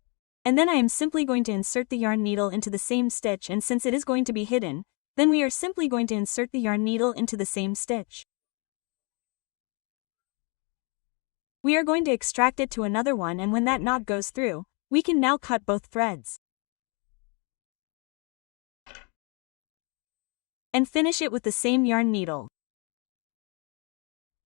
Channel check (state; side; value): quieter; right; 33.4 dB